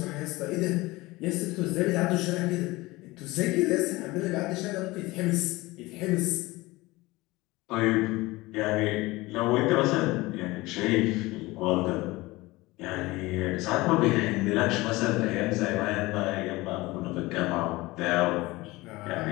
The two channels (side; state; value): right; quieter; 20.7 dB